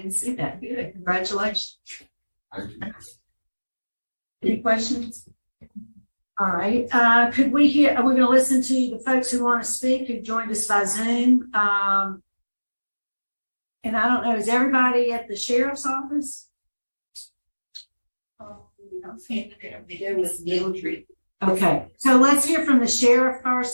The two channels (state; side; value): inverted; both; correlation -1.00